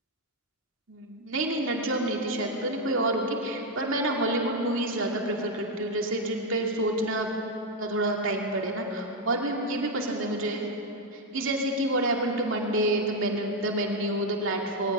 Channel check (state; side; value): normal; both; correlation 0.04